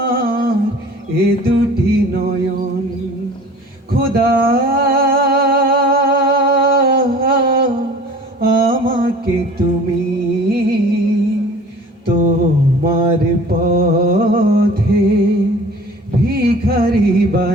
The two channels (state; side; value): normal; both; correlation 0.45